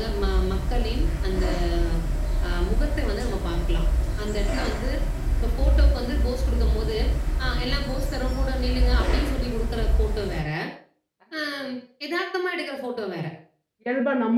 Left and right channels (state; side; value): identical; both; correlation 1.00